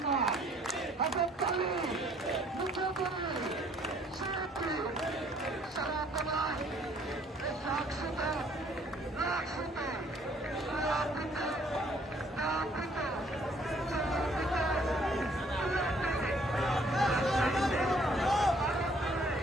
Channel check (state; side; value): normal; both; correlation 0.61